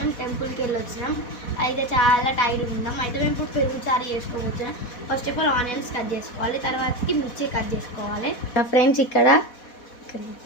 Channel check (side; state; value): right; late; 4.1 ms